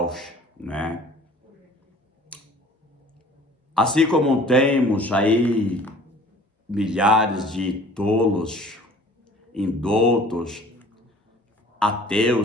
né? Assim como temos aí milhares de tolos, indoutos,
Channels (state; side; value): normal; both; correlation 0.49